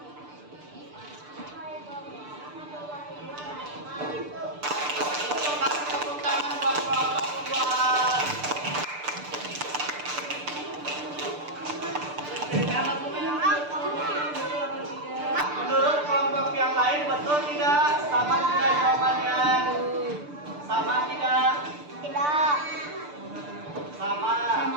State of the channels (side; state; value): left; late; 6.8 ms